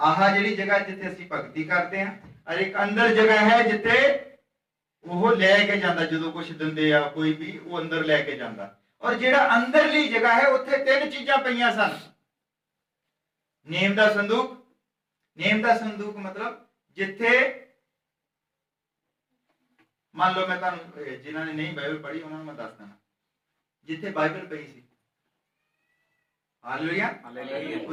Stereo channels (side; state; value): both; identical; correlation 1.00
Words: ਜਿਹੜੀ ਜਗ੍ਹਾ ਜਿੱਥੇ ਅਸੀਂ ਭਗਤੀ ਕਰਦੇ ਹਾਂ, ਔਰ ਇੱਕ ਅੰਦਰ ਜਗ੍ਹਾ ਹੈ ਜਿੱਥੇ ਉਹ ਲੈ ਕੇ ਜਾਂਦਾ, ਜਦੋਂ ਕੁਝ ਦਿੰਦੇ ਆ ਕੋਈ ਵੀ, ਉਹ ਅੰਦਰ ਲੈ ਕੇ ਜਾਂਦਾ। ਔਰ ਜਿਹੜਾ ਅੰਦਰਲੀ ਜਗ੍ਹਾ ਹੈ ਉੱਥੇ 3 ਚੀਜ਼ਾਂ ਪਈਆਂ ਸਨ। ਨੇਮ ਦਾ ਸੰਦੂਕ, ਨੇਮ ਦਾ ਸੰਦੂਕ ਮਤਲਬ ਜਿੱਥੇ ਮੰਨ ਲਓ, ਮੈਂ ਤੁਹਾਨੂੰ ਜਿਨ੍ਹਾਂ ਨੇ ਨਹੀਂ ਬਾਈਬਲ ਪੜ੍ਹੀ ਉਹਨਾਂ ਨੂੰ ਮੈਂ ਦੱਸ ਦਿੰਦਾ, ਜਿੱਥੇ ਬਾਈਬਲ ਪਈ ਸੀ। ਹਾਲੇਲੂਇਆ।